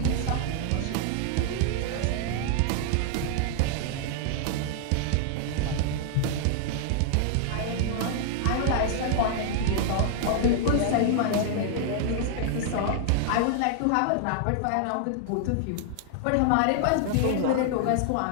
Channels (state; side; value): different; both; correlation -0.01